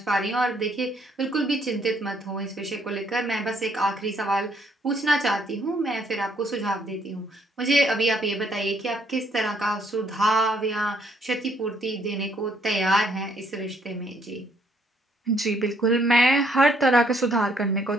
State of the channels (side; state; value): both; normal; correlation 0.68